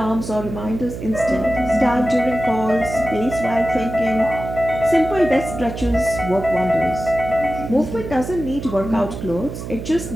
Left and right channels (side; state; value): right; noise; hum, 8 dB below the sound